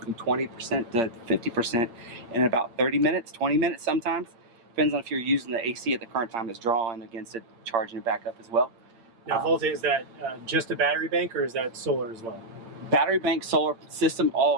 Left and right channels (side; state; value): left; late; 8.7 ms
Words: 20% to 50% in about 30 minutes, 20 minutes sometimes. Depends on if you're using the AC at the current time it's drawing against it, charging it back up as well. Now, Volta, is that just a battery bank or is that solar as well? Battery bank solar system,